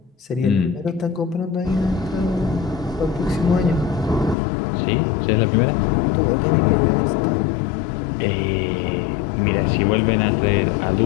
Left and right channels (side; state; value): right; drops out; at 4.4 s